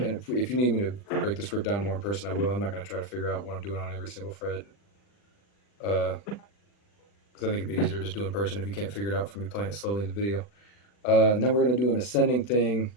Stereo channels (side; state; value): right; late; 40 ms